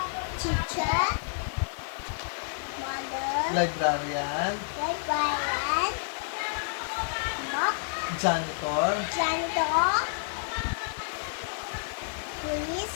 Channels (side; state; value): right; silent; 58 dB below the other